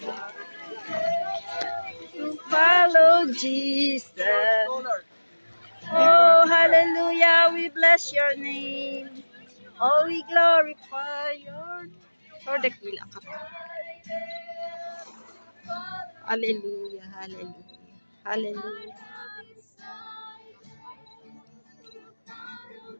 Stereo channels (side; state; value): both; inverted; correlation -1.00